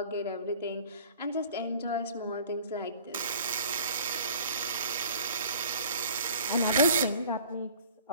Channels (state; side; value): inverted; both; correlation -0.49